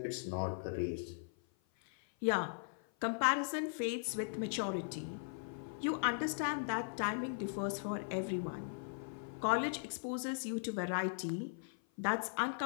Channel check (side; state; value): right; silent; 52 dB below the other